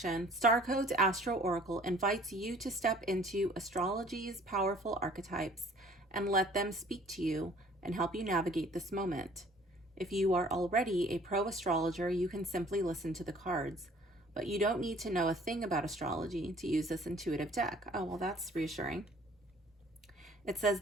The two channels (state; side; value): normal; both; correlation 0.54